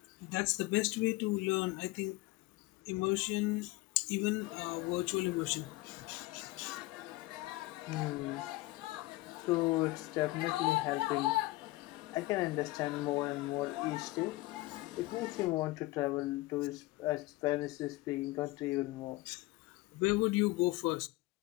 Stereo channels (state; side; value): quieter; right; 20.0 dB